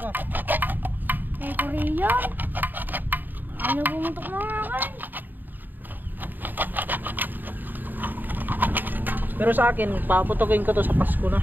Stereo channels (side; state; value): left; late; 0.090 ms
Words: Eh, Korean. Ano bumutok mga akin? Pero sa akin, paputukin ko to sa Pasko na.